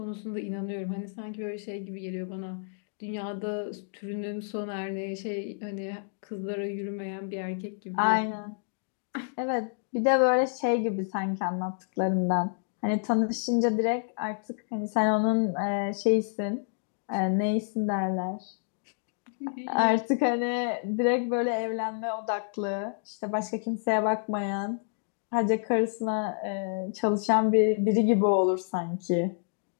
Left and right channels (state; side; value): silent; right; digital silence